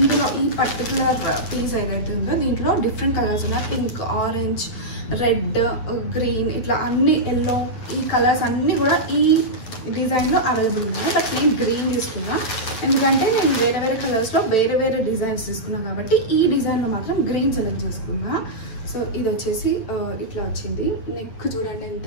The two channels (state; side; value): late; right; 8.7 ms